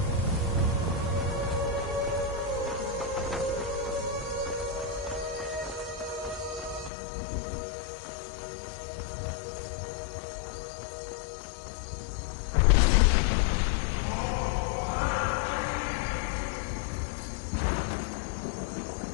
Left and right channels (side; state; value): right; drops out; at 6.9 s